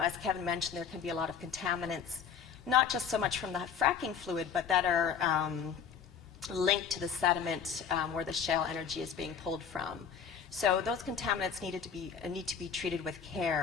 Kevin mentioned, there can be a lot of contaminants, not just so much from the fracking fluid, but that are linked to the sediment where the shale energy is being pulled from. So those contaminants need to be treated with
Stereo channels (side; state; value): right; quieter; 7.1 dB